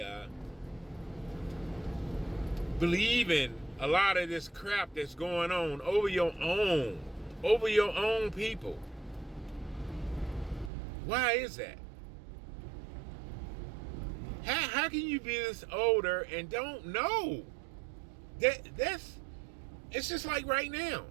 believe in a lot of this crap that's going on over your own people? Why is that? How can you be this older and don't know? It's just like right now.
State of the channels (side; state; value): left; drops out; at 10.7 s